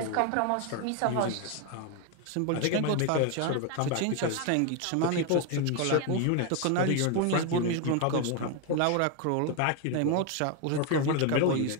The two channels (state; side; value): different; both; correlation 0.01